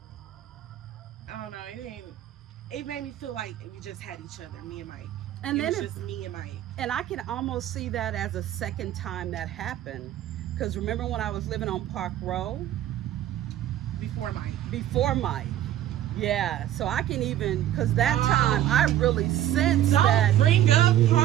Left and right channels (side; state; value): left; quieter; 12.1 dB